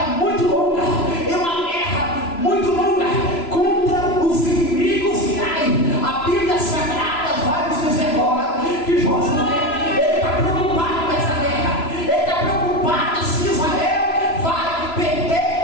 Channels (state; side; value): late; right; 3.0 ms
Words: muito longa, em uma guerra muito longa contra os inimigos